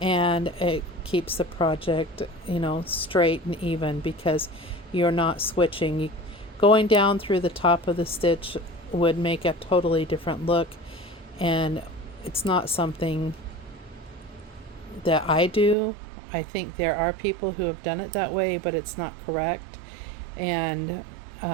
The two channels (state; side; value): drops out; left; at 15.8 s